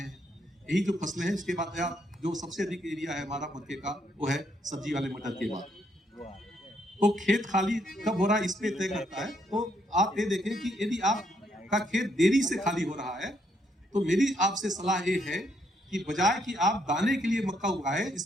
हैं। यही जो फसलें हैं उसके बाद या जो सबसे अधिक एरिया है हमारा मक्के का वो है सब्जी वाले मटर के बाद। तो खेत खाली कब हो रहा है इस पे तय करता है। तो आप ये देखें कि यदि आपका खेत देरी से खाली हो रहा है तो मेरी आपसे सलाह ये है कि बजाय कि आप दाने के लिए मक्का उगाएं,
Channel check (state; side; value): normal; both; correlation 0.73